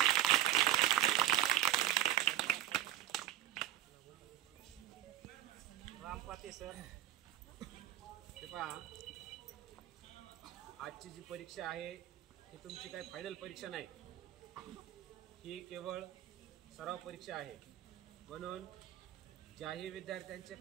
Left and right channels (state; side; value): quieter; left; 12.8 dB